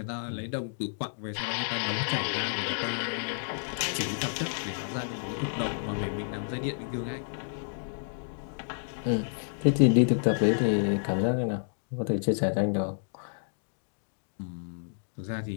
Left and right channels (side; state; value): right; silent; digital silence